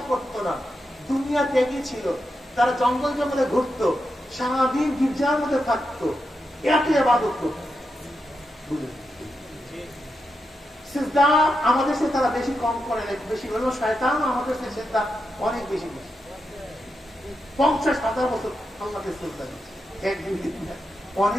করতো না, দুনিয়া ত্যাগী ছিল। তারা জঙ্গল জঙ্গলে ঘুরতো, সারাদিন গির্জার মধ্যে থাকতো, এত ইবাদত করতো। সিজদা আমাদের সাথে তারা বেশি কম করে, বেশি হলো শয়তান আমাদের সাথে সিজদা অনেক বেশি বেশি। 50,000 বছর আল্লাহকে সিজদা দিচ্ছে, একদিন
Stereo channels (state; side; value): normal; both; correlation 0.86